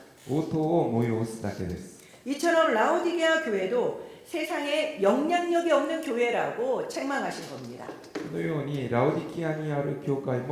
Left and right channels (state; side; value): identical; both; correlation 1.00